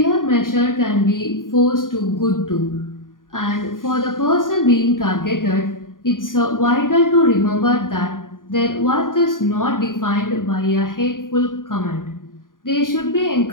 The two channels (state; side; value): late; right; 0.90 ms